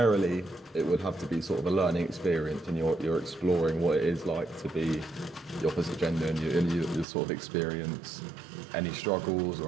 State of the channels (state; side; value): drops out; left; at 7.1 s